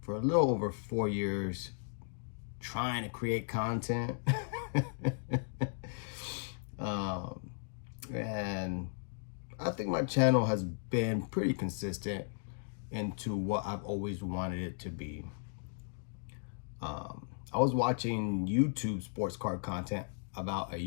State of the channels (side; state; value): right; silent; digital silence